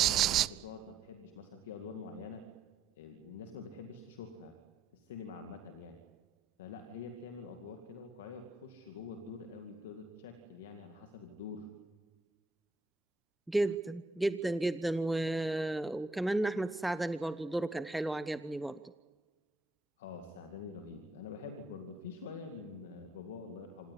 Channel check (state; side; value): quieter; left; 3.0 dB